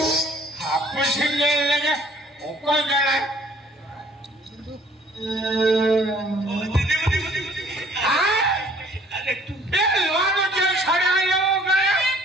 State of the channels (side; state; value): both; normal; correlation 0.57